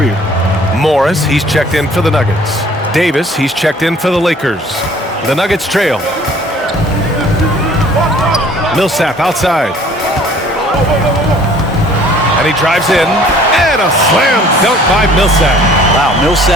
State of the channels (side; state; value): both; normal; correlation 0.54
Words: Morris, he's checked in for the Nuggets. Davis, he's checked in for the Lakers. The Nuggets trail. Millsap outside. And he drives in, and a slam dunk by Millsap. Wow,